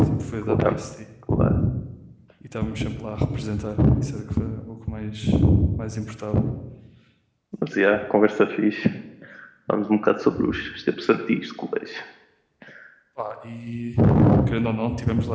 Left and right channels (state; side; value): identical; both; correlation 1.00